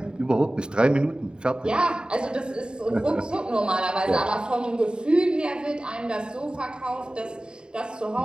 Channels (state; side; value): late; left; 0.049 ms